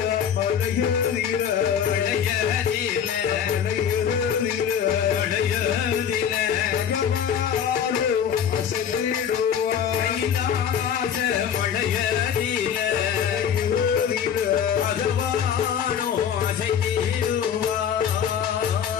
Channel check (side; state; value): right; quieter; 8.3 dB